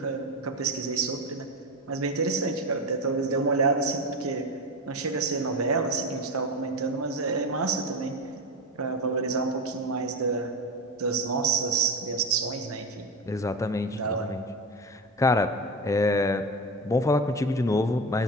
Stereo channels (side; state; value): both; normal; correlation 0.21